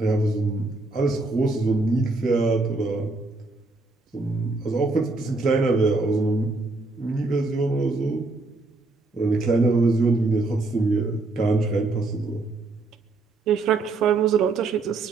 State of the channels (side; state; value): left; quieter; 3.4 dB